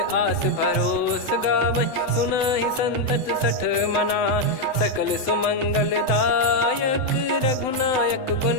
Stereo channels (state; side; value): late; right; 7.9 ms